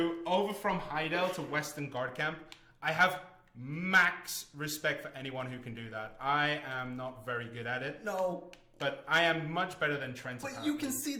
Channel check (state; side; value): identical; both; correlation 1.00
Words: Heidel to Western Guard Camp. I have max respect for anyone who can do that. I am not very good at it. No. But I am much better than Trent. But you can see